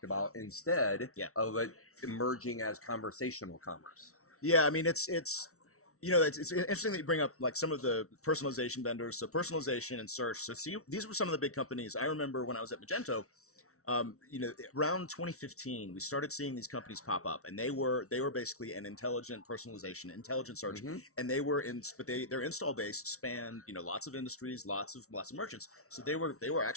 about instead of it emerging as conversational commerce. I mean, it's interesting that you bring up like some of the personalization vendors. So personalization and search. So see, these were some of the big companies. I remember when I was at Magento, around 2015, we started seeing these companies pop up, and they were basically an intelligent personalization, intelligent search, and they were their install base spanned lots of industries, lots of merchants. So they were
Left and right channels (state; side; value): late; right; 0.63 ms